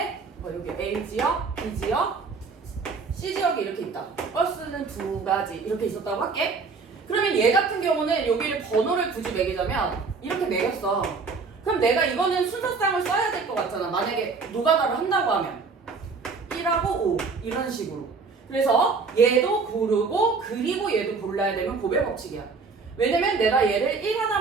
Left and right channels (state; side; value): quieter; left; 4.6 dB